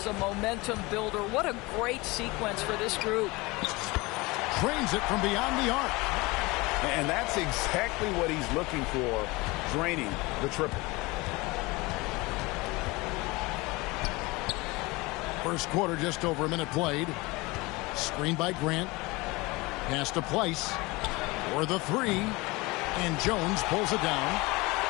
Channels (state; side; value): quieter; right; 23.4 dB